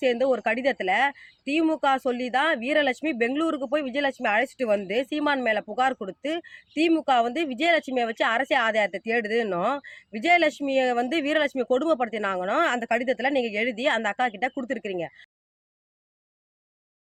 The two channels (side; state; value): both; identical; correlation 1.00